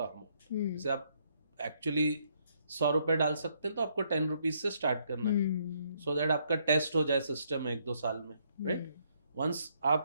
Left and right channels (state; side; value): inverted; both; correlation -0.72